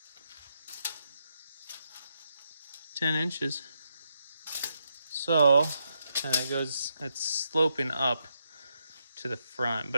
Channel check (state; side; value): inverted; both; correlation -0.81